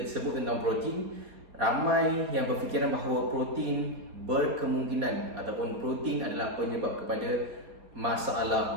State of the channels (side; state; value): left; late; 4.2 ms